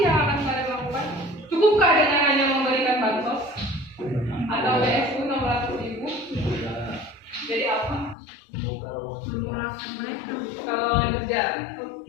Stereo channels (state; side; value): drops out; right; at 8.2 s